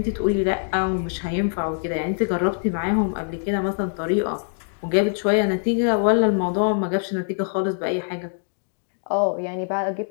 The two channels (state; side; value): silent; right; digital silence